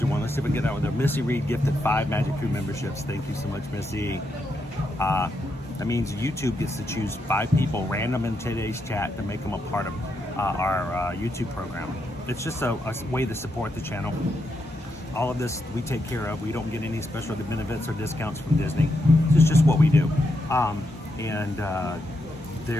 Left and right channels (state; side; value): normal; both; correlation 0.82